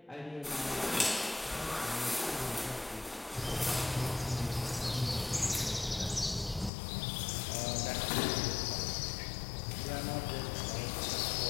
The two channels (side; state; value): right; drops out; at 6.7 s